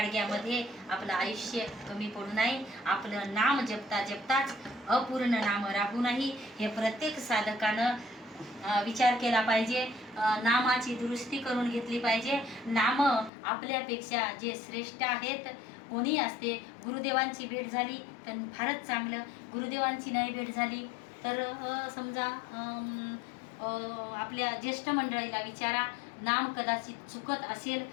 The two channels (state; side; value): drops out; right; at 13.3 s